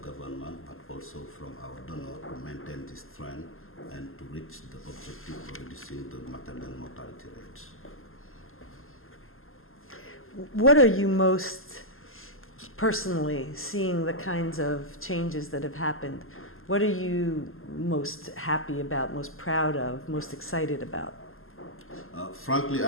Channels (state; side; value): late; right; 0.61 ms